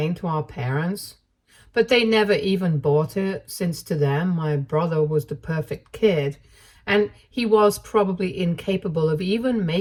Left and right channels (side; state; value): both; identical; correlation 1.00